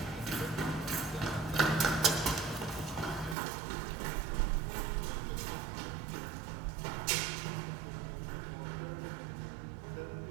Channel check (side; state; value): left; drops out; at 3.4 s